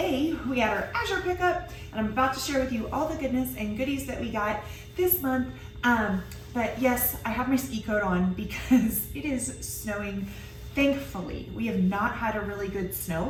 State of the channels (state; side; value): identical; both; correlation 1.00